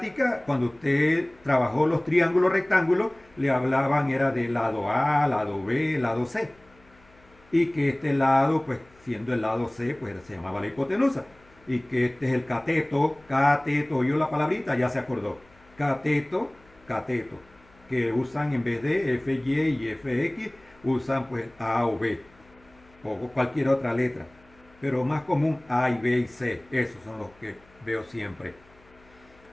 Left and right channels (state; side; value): noise; left; hum, 29 dB below the sound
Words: cuando usted trabajó los triángulos rectángulos, le hablaban era de lado A, lado B, lado C. Y que este lado, pues siendo el lado C, pues se llamaba la hipotenusa. Y que este es el cateto, oyó la palabrita, ya se acordó. Cateto, cateto. Que usan en vez de FY y FX, usan pues A o B. O cualquier otra letra. Pero más común A y B y C. Esos son los que veo siempre.